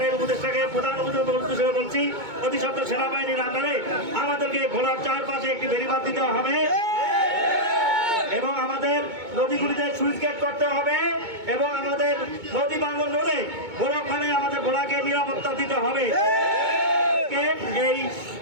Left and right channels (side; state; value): left; late; 2.2 ms